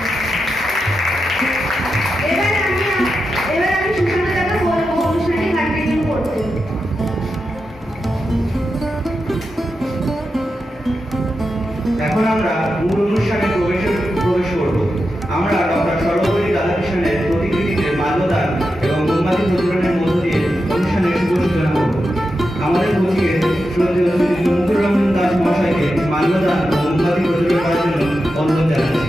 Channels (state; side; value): normal; both; correlation 0.89